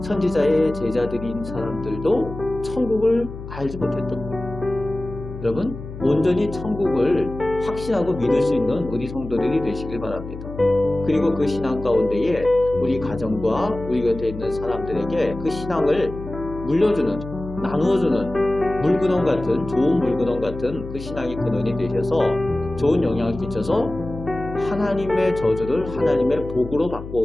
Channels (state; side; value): noise; left; hum, 11 dB below the sound